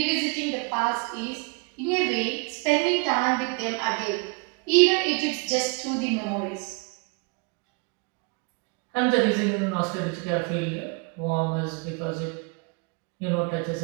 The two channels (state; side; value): quieter; left; 32.7 dB